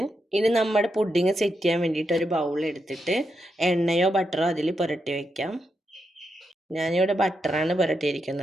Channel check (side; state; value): both; normal; correlation 0.83